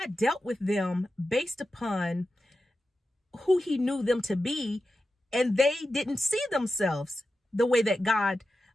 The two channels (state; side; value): normal; both; correlation 0.91